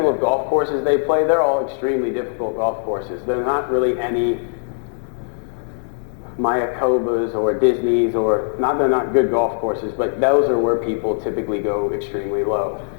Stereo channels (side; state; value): right; silent; digital silence